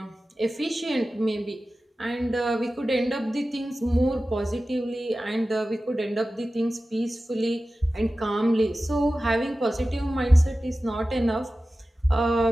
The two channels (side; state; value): both; normal; correlation 0.95